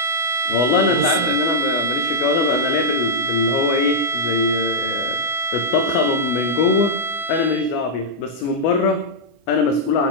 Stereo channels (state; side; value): late; right; 24 ms